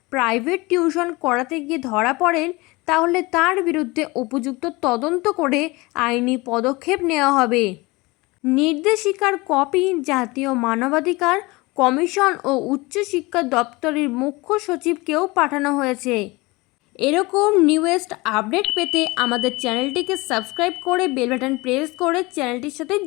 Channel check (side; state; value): right; quieter; 23.4 dB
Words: প্রাইভেট টিউশন করাতে গিয়ে ধরা পড়েন, তাহলে তার বিরুদ্ধে উপযুক্ত তদন্ত করে আইনি পদক্ষেপ নেওয়া হবে। নির্দেশিকার কপি জাতীয় মানবাধিকার কমিশন ও উচ্চশিক্ষা দপ্তরের মুখ্য সচিবকেও পাঠানো হয়েছে। এরকম নিউয়েস্ট আপডেট পেতে আমাদের চ্যানেলটিকে সাবস্ক্রাইব করে বেল বাটন প্রেস করে চ্যানেলটির সাথে